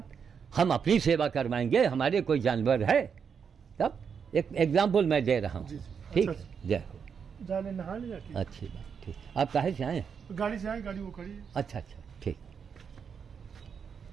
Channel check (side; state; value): left; quieter; 6.7 dB